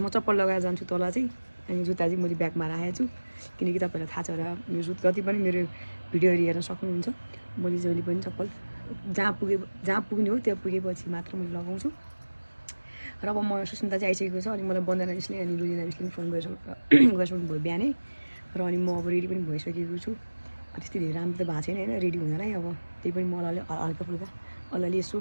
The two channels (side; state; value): both; inverted; correlation -1.00